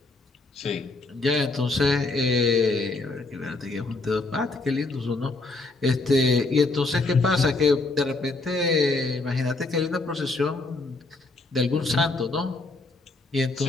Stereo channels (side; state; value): right; quieter; 3.3 dB